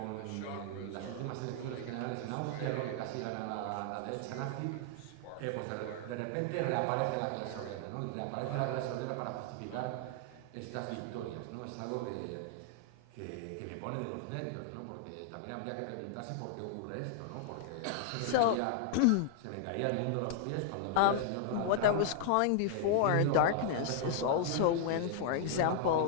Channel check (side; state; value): both; different; correlation -0.01